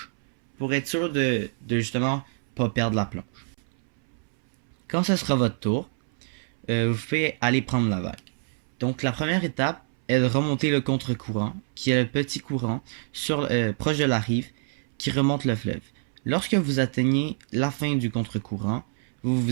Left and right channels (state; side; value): silent; left; 61 dB below the other